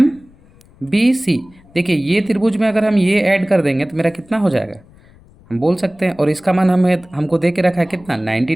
देखिए ये त्रिभुज में अगर हम ये ऐड कर देंगे तो मेरा कितना हो जाएगा? हम बोल सकते हैं। और इसका मान हमको दे के रखा है कितना? 90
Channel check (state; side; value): noise; left; rumble, 27 dB below the sound